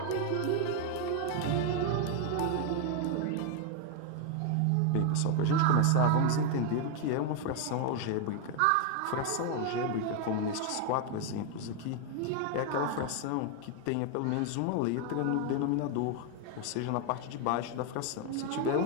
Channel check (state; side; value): different; both; correlation 0.01